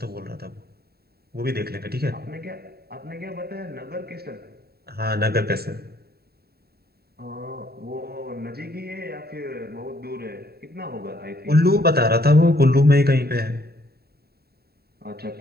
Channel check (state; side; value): late; left; 0.46 ms